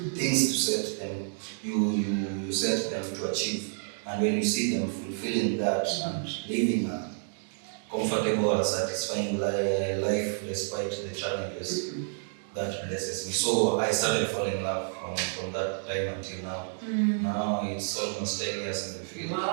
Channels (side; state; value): left; silent; digital silence